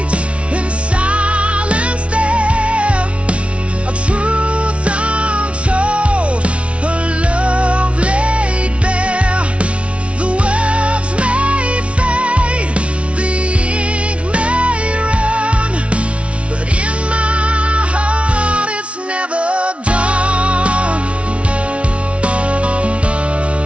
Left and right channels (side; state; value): left; late; 0.061 ms